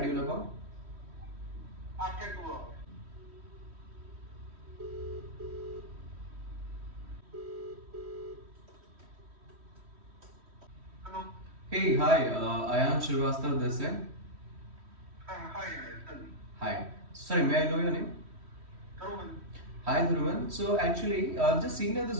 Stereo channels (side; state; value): left; late; 3.1 ms